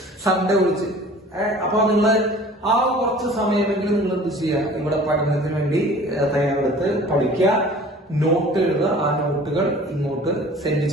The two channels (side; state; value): both; normal; correlation 0.46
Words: സൺഡേ വിളിച്ച്. അപ്പൊ നിങ്ങൾ ആ കുറച്ച് സമയമെങ്കിലും നിങ്ങൾ എന്ത് ചെയ്യുക, ഇവിടെ പഠനത്തിന് വേണ്ടി തയ്യാറെടുത്ത് പഠിക്കുക, നോട്ട് എഴുതുക. ആ നോട്ടുകൾ ഇങ്ങോട്ട് സെൻഡ്